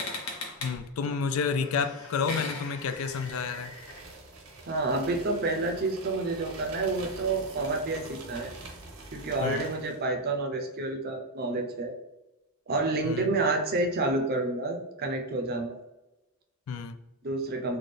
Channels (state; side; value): normal; both; correlation 0.07